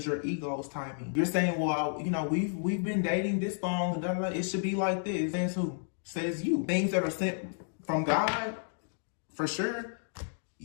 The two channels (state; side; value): silent; right; digital silence